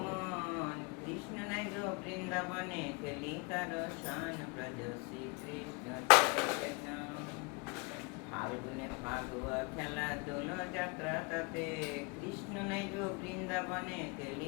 कृष्ण নাই গো বৃন্দাবনে খেলি কার শান ব্রজ শ্রী কৃষ্ণ চৈতন্য ফাল্গুনে ফাগুয়া খেলা দোল যাত্রা তাতে কৃষ্ণ নাই গো বৃন্দাবনে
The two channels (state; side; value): quieter; right; 30.7 dB